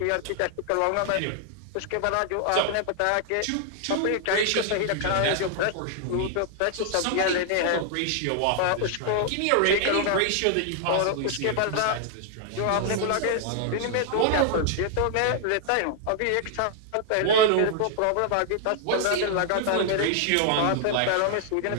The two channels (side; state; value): both; different; correlation 0.00